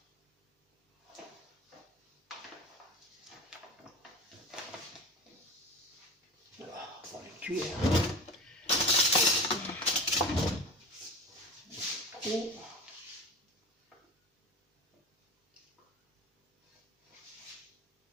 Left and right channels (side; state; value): both; normal; correlation 0.31